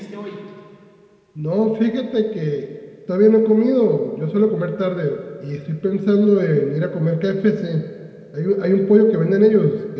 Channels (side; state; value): both; identical; correlation 1.00